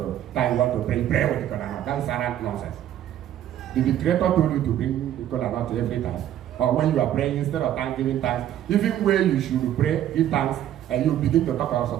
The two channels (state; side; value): quieter; left; 11.5 dB